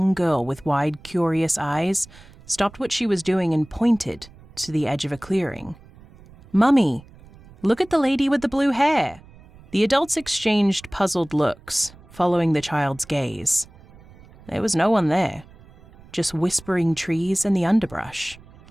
girl with wide, curious eyes, stopped what she was doing and pointed to the edge of a clearing. "Mummy, look at the lady with the blue hair." The adults exchanged puzzled looks, following the child's gaze. There was no one there, just whispering trees and the underbrush.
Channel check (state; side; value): noise; right; rumble, 23 dB below the sound